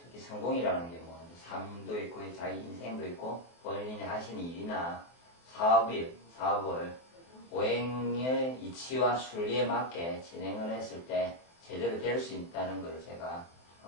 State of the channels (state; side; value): late; right; 23 ms